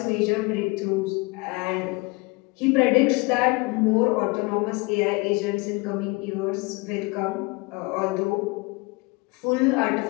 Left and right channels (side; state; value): right; quieter; 26.4 dB